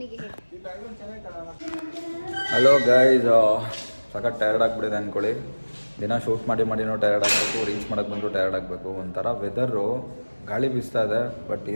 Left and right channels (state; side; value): inverted; both; correlation -1.00